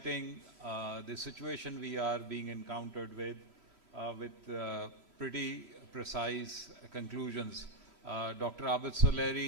the situation we are being encountered with pretty precise conclusions. Dr. Abid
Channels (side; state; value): right; late; 5.2 ms